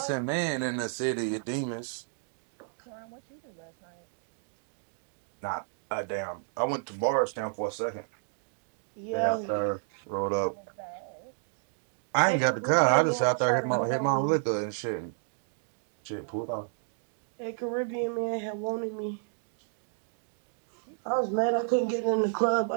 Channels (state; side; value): silent; left; digital silence